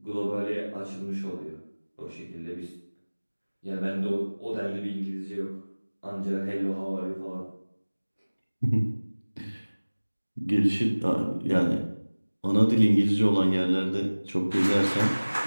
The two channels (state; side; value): inverted; both; correlation -1.00